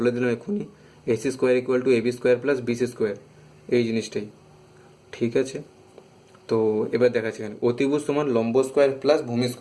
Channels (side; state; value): both; identical; correlation 1.00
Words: দিলাম এক্ষুনি। AC square equal to AB square plus BC square, এই জিনিসটাই। ঠিক আছে, তো এবার দেখাচ্ছি এখানে অতিভুজ সমান লম্ব স্কোয়ার প্লাস ভূমি